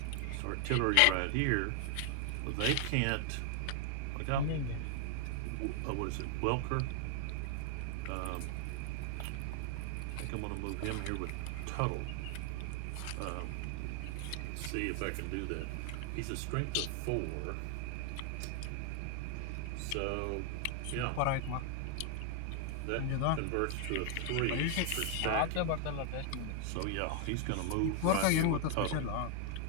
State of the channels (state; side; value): different; both; correlation 0.00